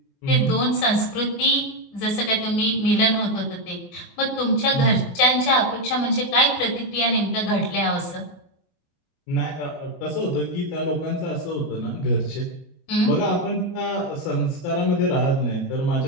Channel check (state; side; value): late; right; 24 ms